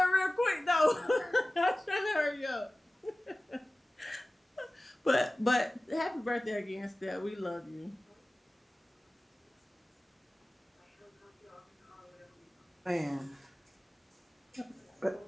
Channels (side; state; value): both; normal; correlation 0.97